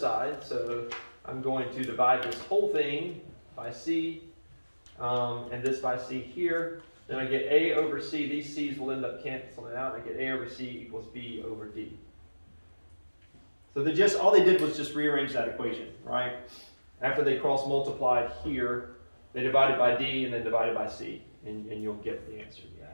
so I'm going to divide this whole thing by C, and this by C here, then I get A over C. These C's will end up canceling out. I get A over C equals B over D. So all they did was just rearrange that equation, right? After they cross multiplied here, they divided by D and then divided by C, and you'll get the answer to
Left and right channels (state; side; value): inverted; both; correlation -1.00